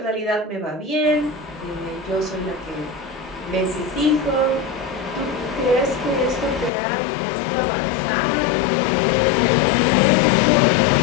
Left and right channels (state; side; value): drops out; right; at 6.7 s